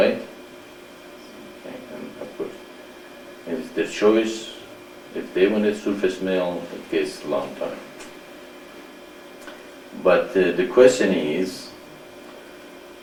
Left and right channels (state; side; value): identical; both; correlation 1.00